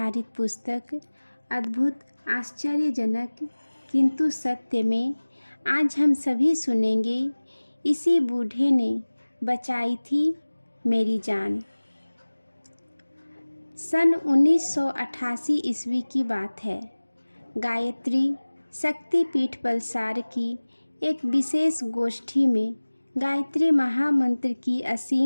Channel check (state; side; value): inverted; both; correlation -1.00